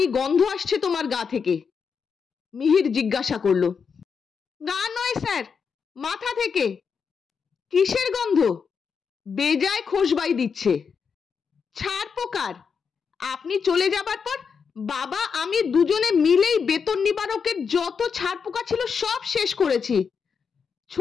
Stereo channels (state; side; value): quieter; right; 6.1 dB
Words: গন্ধ আসছে তোমার গা থেকে। মিহির জিজ্ঞাসা করল। গা নয় স্যার, মাথা থেকে। কিসের গন্ধ? বেজায় খোশবাই দিচ্ছে। ছারপোকার। আপনি চলে যাবার পর বাবা আমি দুজনে মিলেই বেতন নিবারকের যত ছারপোকা ছিল সব শেষ করেছি।